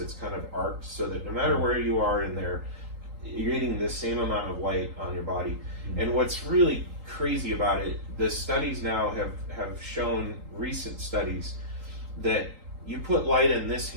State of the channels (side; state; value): left; late; 3.8 ms